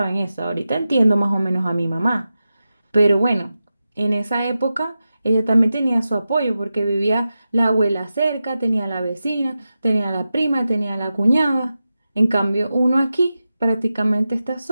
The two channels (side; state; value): both; inverted; correlation -0.92